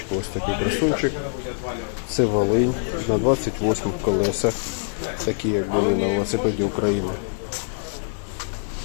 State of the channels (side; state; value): right; silent; 61 dB below the other